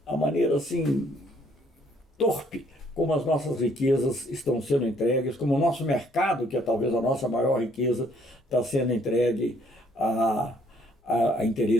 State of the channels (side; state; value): both; normal; correlation 0.64